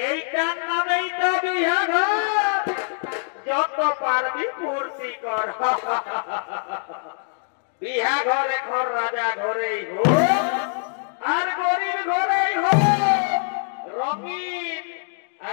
নামেই তো বিয়া ঘর। যত পারবি ফুর্তি কর। বিয়া ঘরে ঘর রাজা ঘরেই হোক আর গরিব ঘরেই হোক, রঙিন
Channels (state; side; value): silent; right; digital silence